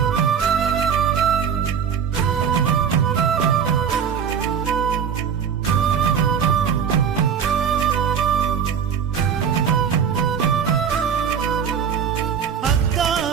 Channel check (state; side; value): quieter; left; 7.4 dB